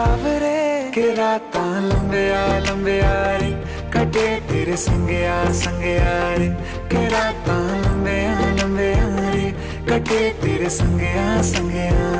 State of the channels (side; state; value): both; identical; correlation 1.00